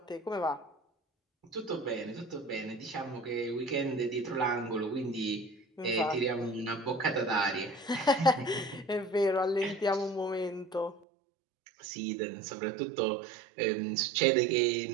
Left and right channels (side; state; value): left; drops out; at 11.1 s